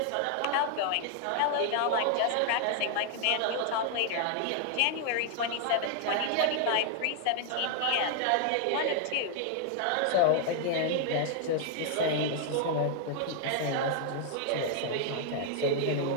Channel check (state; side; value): different; both; correlation 0.00